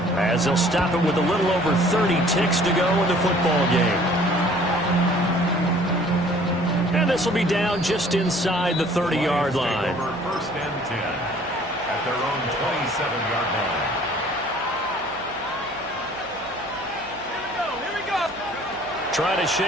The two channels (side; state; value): right; noise; hum, 22 dB below the sound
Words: as they'll stop it with a little over 30 ticks to go in the football game. And this will be down just inside the 30-yard line. 1st and 10 at their own 27-yard line. Trying to